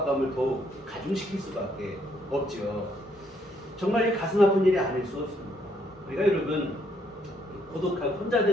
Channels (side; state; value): both; normal; correlation 0.71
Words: 더욱 가중시킬 수밖에 없죠. 정말 이 가슴 아픈 일이 아닐 수 없습니다. 그러니까 여러분, 고독하고 혼자